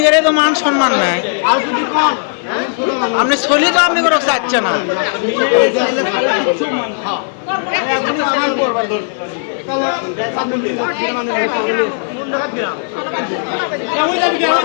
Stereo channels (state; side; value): silent; right; 62 dB below the other